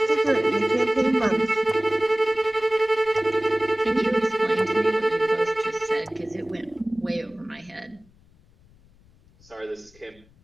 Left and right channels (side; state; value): left; noise; rumble, 29 dB below the sound